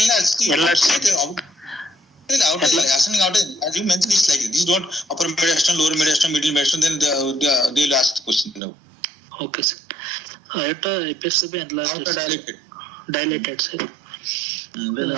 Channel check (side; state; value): left; drops out; at 8.6 s